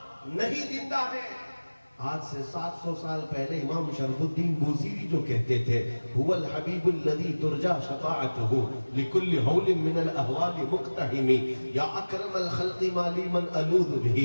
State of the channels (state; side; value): inverted; both; correlation -1.00